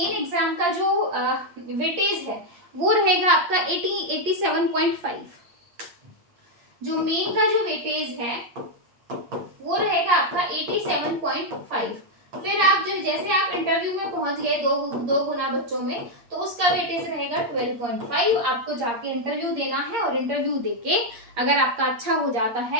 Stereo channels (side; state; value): left; late; 8.6 ms